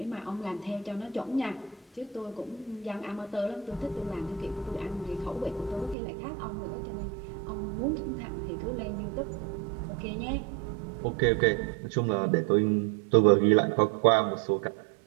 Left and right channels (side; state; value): left; drops out; at 6.0 s